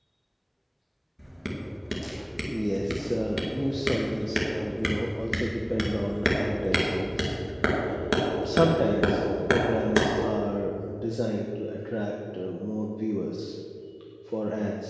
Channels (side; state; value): both; identical; correlation 1.00